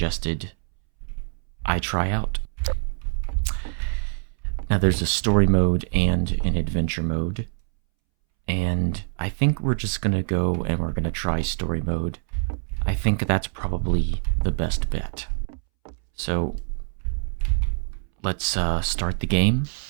I try out. Now there's a story mode and an adventure mode, and I think we're just gonna go and we're gonna try story mode. I think that's probably the best bet. So let's start the game.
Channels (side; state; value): left; silent; 62 dB below the other